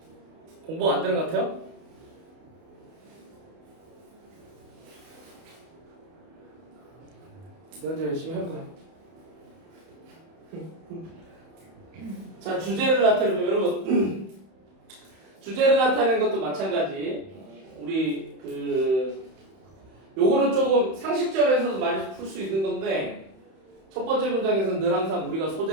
공부 안 되는 것 같아요? 먼저 열심히 해볼까요? 자, 주제를 나타내면 여러분 주제를 나타내는 것도 마찬가지. 우리 요거는 조금 상식적에서도 많이 풀 수 있는 건데 첫 번째 문장에서는 늘 항상 우리가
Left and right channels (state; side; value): late; left; 31 ms